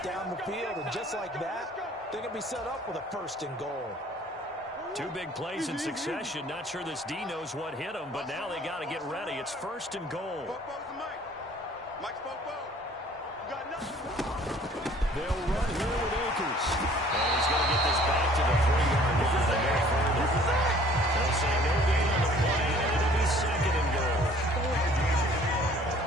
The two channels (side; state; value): both; normal; correlation 0.54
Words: down the field, and just like that, they're going to be set up with a 1st and goal. 2 big plays in succession. Not sure this D knows what hit him, but now they got to get ready. It's 1st and goal. They'll run here with Akers. And he's going to get this back to the 3-yard line. They'll say no gain on the play, and it'll be 2nd and goal.